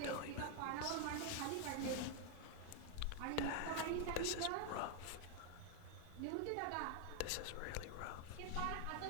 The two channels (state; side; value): different; both; correlation 0.00